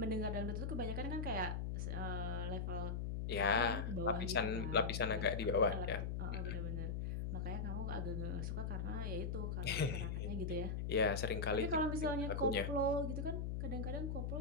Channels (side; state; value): left; noise; hum, 1 dB below the sound